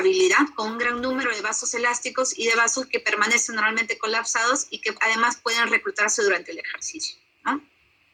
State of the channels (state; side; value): identical; both; correlation 1.00